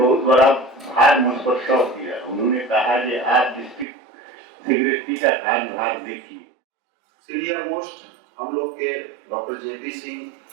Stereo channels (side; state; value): left; drops out; at 3.9 s